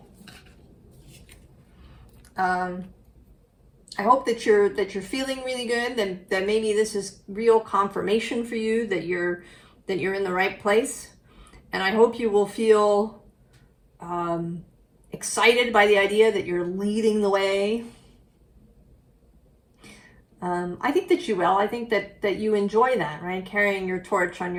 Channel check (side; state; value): both; identical; correlation 1.00